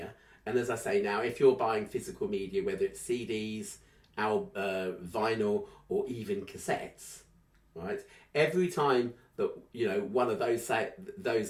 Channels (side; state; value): both; identical; correlation 1.00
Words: and as I say now, if you're buying physical media, whether it's CDs, vinyl, or even cassettes, right? Every time that, you know, one of those